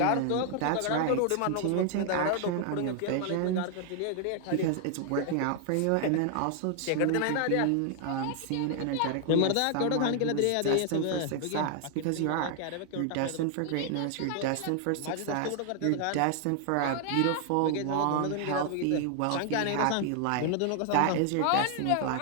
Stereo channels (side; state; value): both; different; correlation 0.00